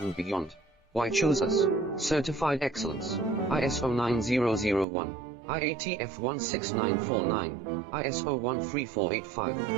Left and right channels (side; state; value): left; drops out; at 4.9 s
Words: beyond. Why choose us? Certified excellence. ISO 9001, IATF 16949, ISO 13485.